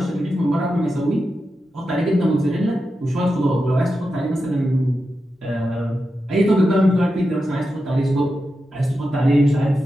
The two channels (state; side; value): normal; both; correlation 0.89